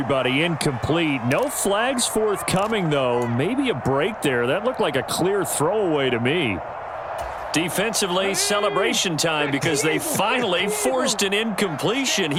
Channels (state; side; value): identical; both; correlation 1.00